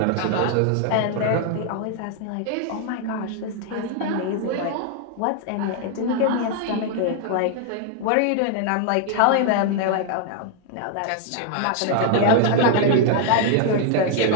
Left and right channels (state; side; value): different; both; correlation 0.00